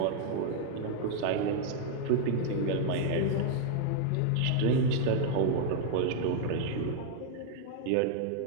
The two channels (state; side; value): different; both; correlation -0.01